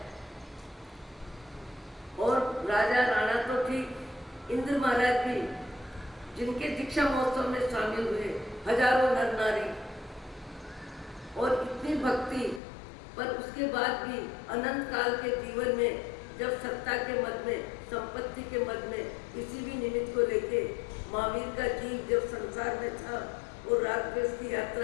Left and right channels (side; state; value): right; drops out; at 12.6 s